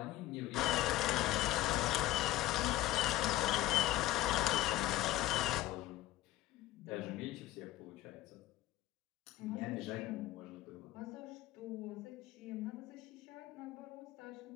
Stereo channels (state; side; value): quieter; right; 15.4 dB